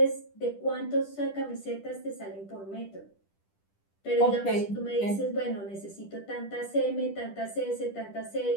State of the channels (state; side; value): late; right; 10 ms